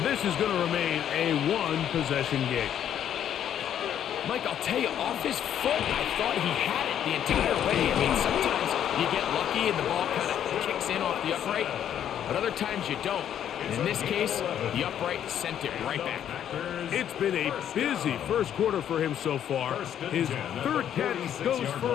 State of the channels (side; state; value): right; quieter; 10.0 dB